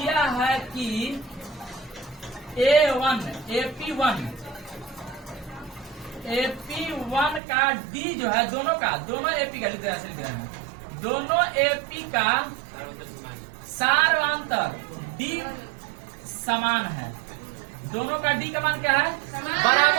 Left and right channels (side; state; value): left; drops out; at 7.4 s